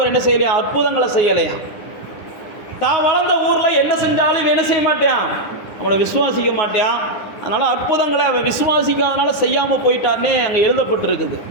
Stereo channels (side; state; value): right; late; 9.8 ms